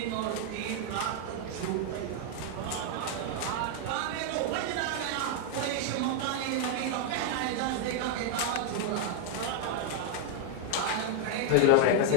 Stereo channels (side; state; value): both; different; correlation 0.00